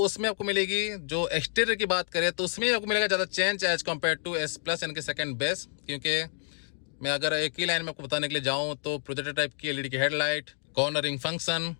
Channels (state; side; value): silent; right; digital silence